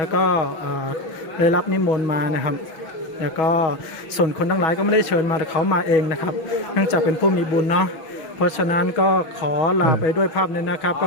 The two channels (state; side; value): late; right; 6.3 ms